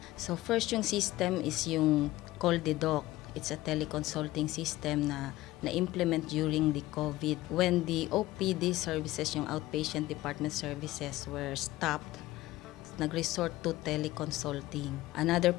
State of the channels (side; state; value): right; quieter; 17.2 dB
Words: So first yung system is yung CallDedoc. It's a teleconsulting system na na-implement during the COVID. When the OPD services, yung outpatient department services, were stopped, nag-resort to teleconsulting. Another